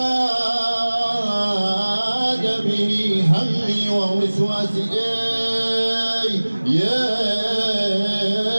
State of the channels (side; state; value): both; inverted; correlation -1.00